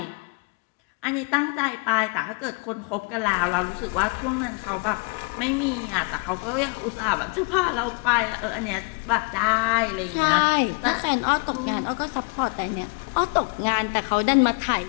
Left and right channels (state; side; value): quieter; right; 34.5 dB